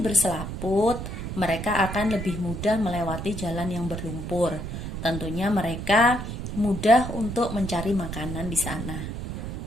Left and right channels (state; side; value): noise; right; rumble, 6 dB below the sound